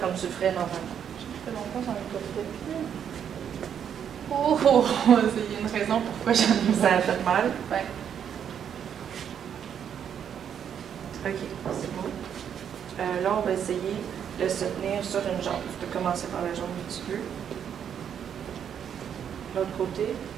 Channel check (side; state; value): left; quieter; 8.5 dB